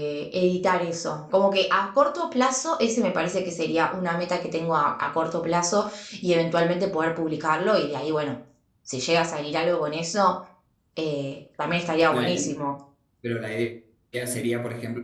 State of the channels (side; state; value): both; identical; correlation 1.00